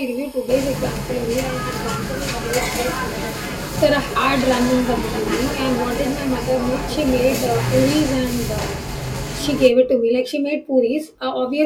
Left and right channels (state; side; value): identical; both; correlation 1.00